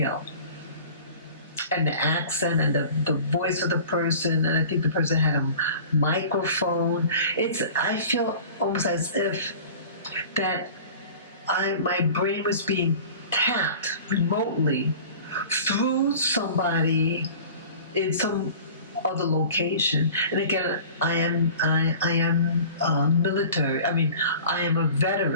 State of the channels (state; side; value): inverted; both; correlation -0.41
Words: And the accent and the voice of the person, and I think the person had a microphone. I feel almost as if that my brain was being tapped remotely through somebody in some other location. And again, I am military. I mean, I am a